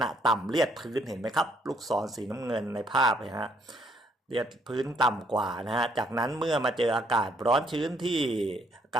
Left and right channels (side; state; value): both; normal; correlation 0.69